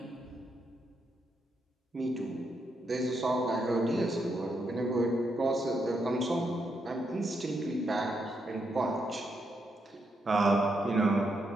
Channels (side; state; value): both; normal; correlation 0.80